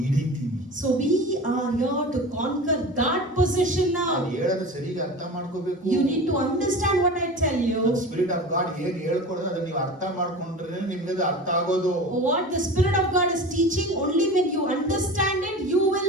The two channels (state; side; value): normal; both; correlation 0.34